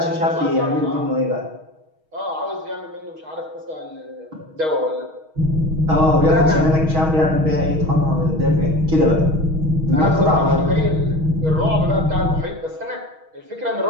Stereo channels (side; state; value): left; late; 6.3 ms